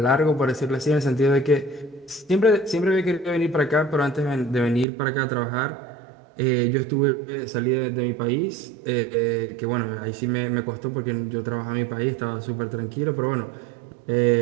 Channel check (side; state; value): left; drops out; at 4.9 s